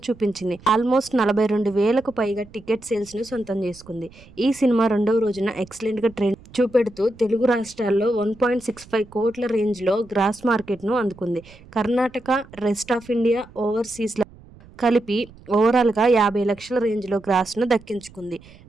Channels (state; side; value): noise; right; rumble, 23 dB below the sound